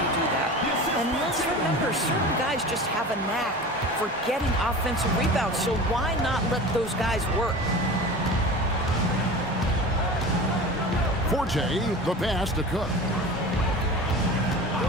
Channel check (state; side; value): normal; both; correlation 0.34